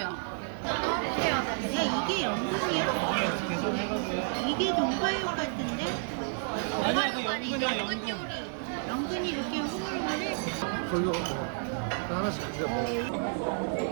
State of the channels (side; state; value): left; silent; 57 dB below the other